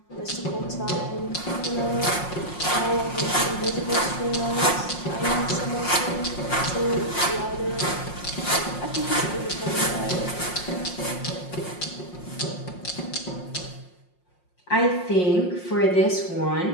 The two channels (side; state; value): right; late; 5.6 ms